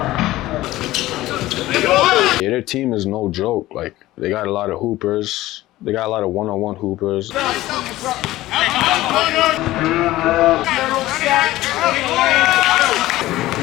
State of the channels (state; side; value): quieter; right; 16.5 dB